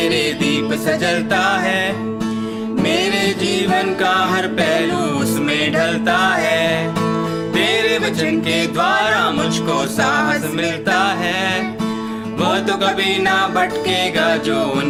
दीप सजलता है, मेरे जीवन का हर पहलू उसमें ढलता है, तेरे वचन के द्वारा मुझको साहस मिलता है, वो तो कभी ना भटकेगा जो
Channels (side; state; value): both; identical; correlation 1.00